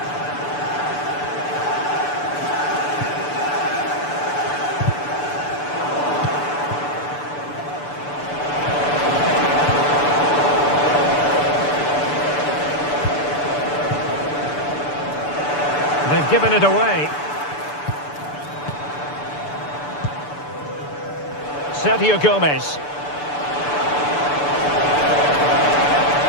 They've given it away. Sergio Gomez.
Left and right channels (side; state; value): right; late; 6.9 ms